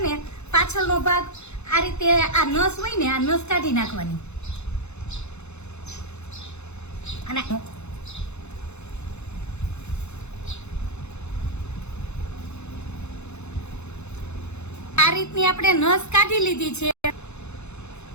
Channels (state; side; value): late; right; 0.81 ms